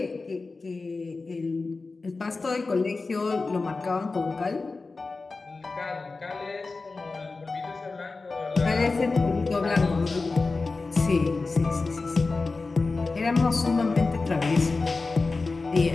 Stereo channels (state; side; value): quieter; right; 3.8 dB